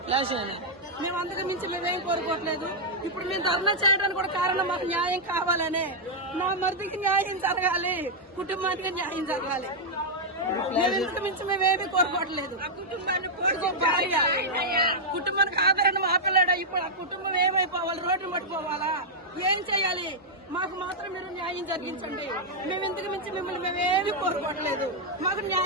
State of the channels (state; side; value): normal; both; correlation -0.06